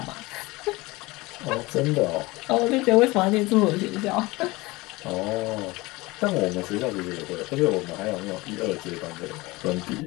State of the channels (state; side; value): quieter; right; 22.0 dB